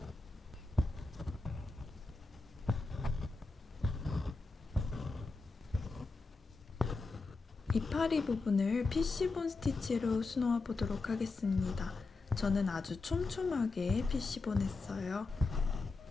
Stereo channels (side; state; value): right; quieter; 3.8 dB